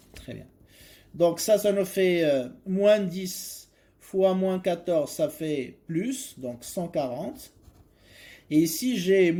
très bien. Donc ça nous fait moins 10 fois moins 14, ça fait plus, donc 140. Et ici, j'ai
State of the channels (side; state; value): both; identical; correlation 1.00